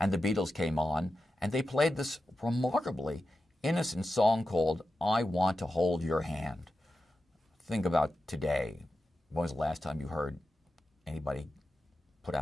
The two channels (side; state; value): both; normal; correlation 0.91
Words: the Beatles came on, and they played this remarkably innocent song called I Want to Hold Your Hand. Think about today. When was the last time you heard anybody put